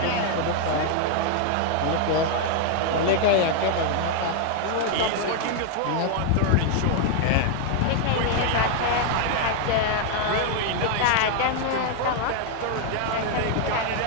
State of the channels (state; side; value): different; both; correlation 0.00